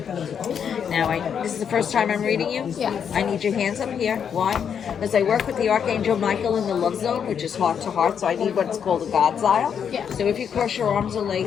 Now, this is the first time I'm reading you? Yes. I need your hands up here. Why? Because I work with the Archangel Michael in the love zone, which is heart to heart, so I need what's called a God's aisle. Yeah. So if you cross your arms or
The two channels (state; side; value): quieter; right; 7.7 dB